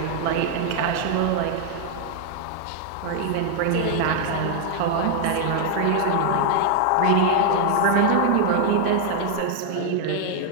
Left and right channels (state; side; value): different; both; correlation 0.00